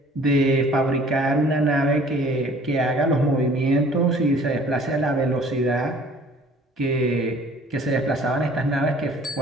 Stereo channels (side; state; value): both; normal; correlation 0.52